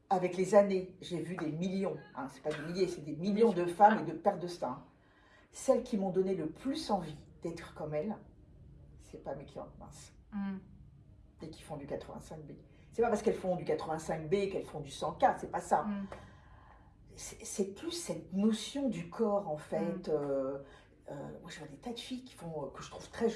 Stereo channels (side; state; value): both; identical; correlation 1.00